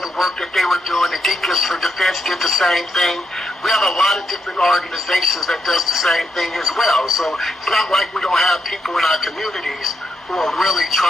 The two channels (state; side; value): normal; both; correlation 0.81